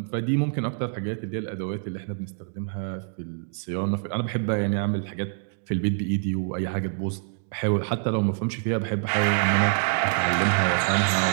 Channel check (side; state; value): left; silent; digital silence